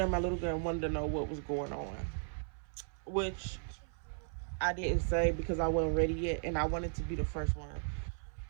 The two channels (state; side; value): silent; left; 54 dB below the other